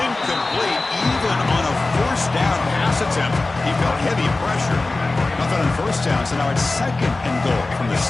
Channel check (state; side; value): quieter; right; 3.2 dB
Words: even on a first down pass attempt. He felt heavy pressure. Nothing on first down, so now it's second and goal from the